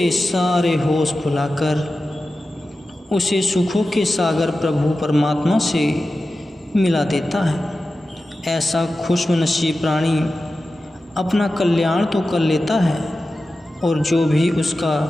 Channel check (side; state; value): both; normal; correlation 0.93